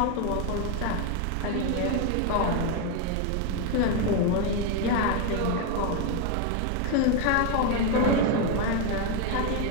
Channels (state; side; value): different; both; correlation 0.01